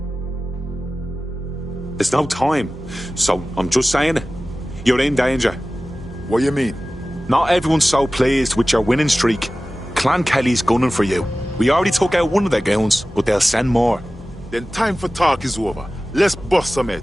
There's no time, so I'm just saying it. You're in danger. What do you mean? Not everyone's so pleased with your winning streak. Clan Kelly's gunning for you. We already took out one of their goons, but they'll send more. Then time for talk is over. Let's bust some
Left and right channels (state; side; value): normal; both; correlation 0.96